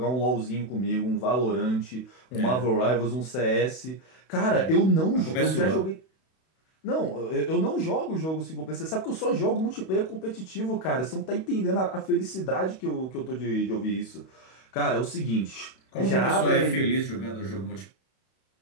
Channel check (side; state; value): right; late; 31 ms